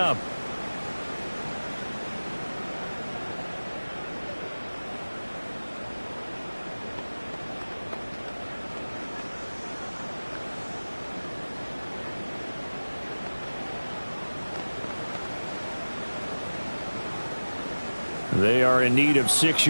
They are in need of 6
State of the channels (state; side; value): inverted; both; correlation -1.00